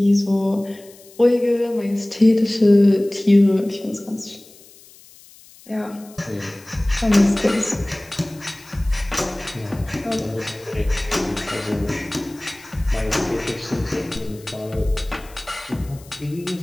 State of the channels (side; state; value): left; noise; hiss, 23 dB below the sound